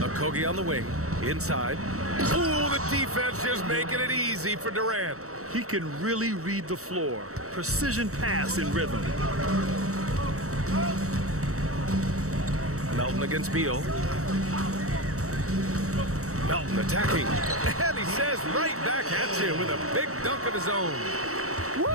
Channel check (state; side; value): late; left; 0.64 ms